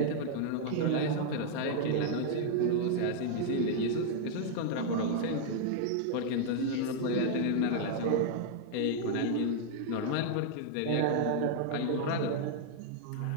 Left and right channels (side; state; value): both; different; correlation 0.00